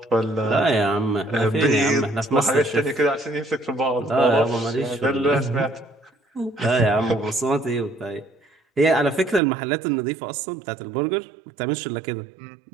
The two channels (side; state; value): left; drops out; at 9.4 s